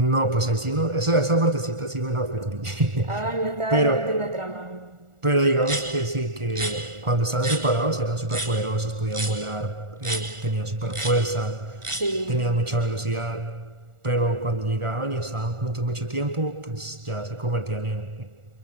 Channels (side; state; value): left; late; 1.4 ms